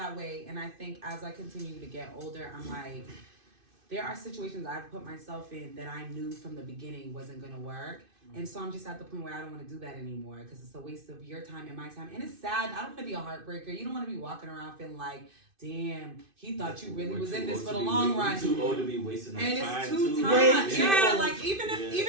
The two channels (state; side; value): late; left; 2.5 ms